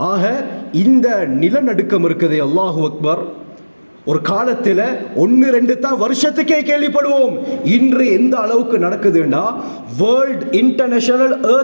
ஆக இந்த நிலநடுக்கம் இருக்குது, அல்லாஹு அக்பர், ஒரு காலத்தில் 1-2 தான் வருஷத்துக்கே கேள்விப்படுவோம். இன்று எந்த அளவுக்கு நடக்குதுன்னா, world international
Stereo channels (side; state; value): both; inverted; correlation -1.00